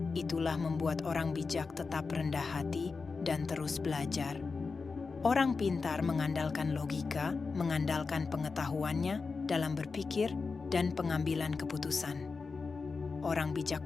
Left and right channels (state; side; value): quieter; right; 4.6 dB